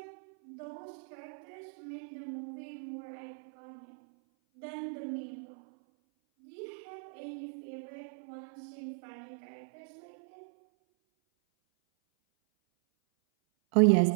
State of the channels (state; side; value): silent; left; 53 dB below the other